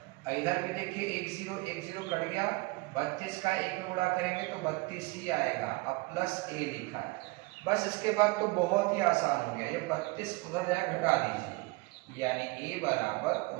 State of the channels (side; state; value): left; quieter; 24.0 dB